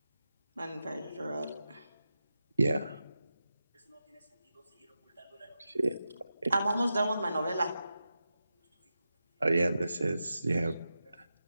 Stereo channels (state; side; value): inverted; both; correlation -0.91